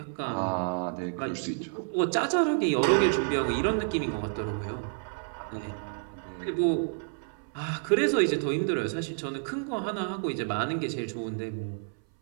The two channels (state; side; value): silent; left; 58 dB below the other